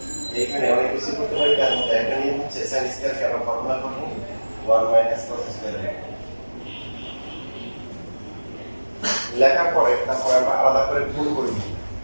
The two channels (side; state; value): both; inverted; correlation -1.00